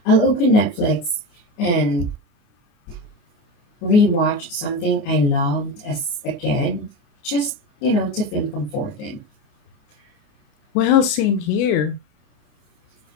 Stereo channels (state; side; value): late; right; 28 ms